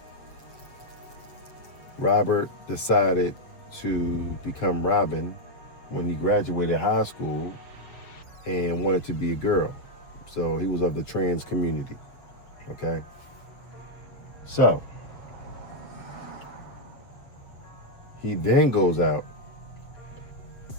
Robert decided to become Robin when he graduated high school and wanted to be a girl. So he was of the trans community, okay? So he then goes out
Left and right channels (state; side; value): late; right; 7.4 ms